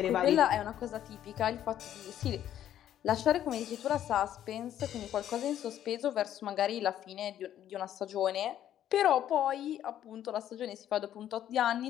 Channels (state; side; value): quieter; right; 11.2 dB